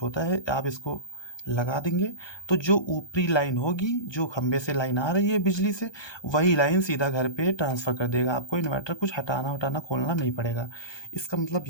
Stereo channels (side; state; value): right; late; 1.2 ms